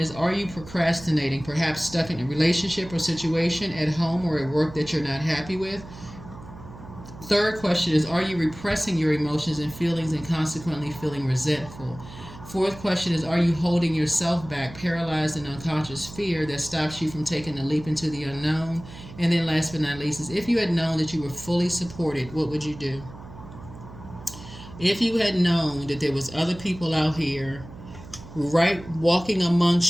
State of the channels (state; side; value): noise; right; hum, 16 dB below the sound